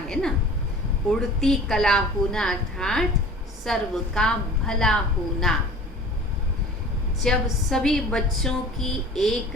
ना। उड़ती कला होना अर्थात सर्व का भला होना। जब सभी बच्चों की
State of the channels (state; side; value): normal; both; correlation 0.43